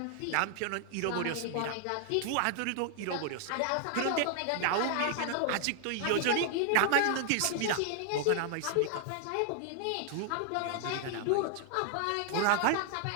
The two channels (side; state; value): both; different; correlation 0.00